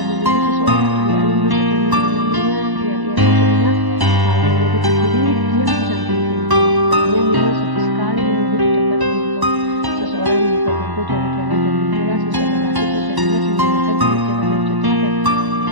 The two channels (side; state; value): left; late; 1.1 ms